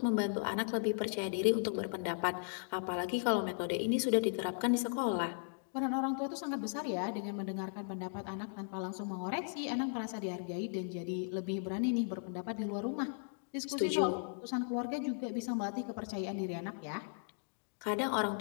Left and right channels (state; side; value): silent; right; digital silence